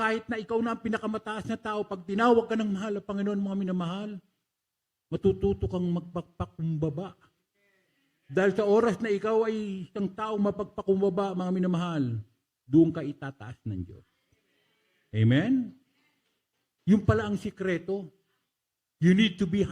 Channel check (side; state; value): both; identical; correlation 1.00